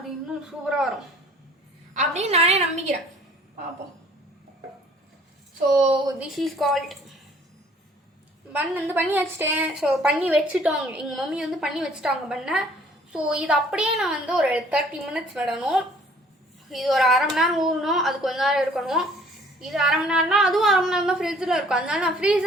இன்னும் சூப்பராக வரும் அப்படின்னு நானே நம்பிக்கிறேன். பார்ப்போம். ஸோ திஸ் இஸ் கால்ட் பன் வந்து பண்ணி வச்சுட்டேன். ஸோ பண்ணி வச்சுட்டோங்க, எங்கள் மம்மி வந்து பண்ணி வச்சுட்டாங்க பண்ணை. ஸோ இது அப்படியே நான் வந்து ஒரு 30 minutes விடணும். இது ஒரு அரை மணி நேரம் ஊறணும், அது கொஞ்ச நேரம் இருக்கணும். இது அரை மணி நேரம்னா அதுவும் அரை மணி நேரம் தான் ஃப்ரிட்ஜில் இருக்கும். அதனால நான்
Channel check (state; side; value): normal; both; correlation 0.56